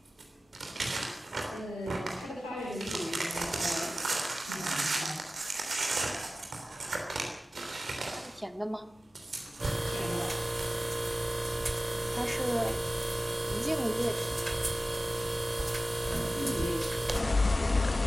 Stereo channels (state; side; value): normal; both; correlation 0.96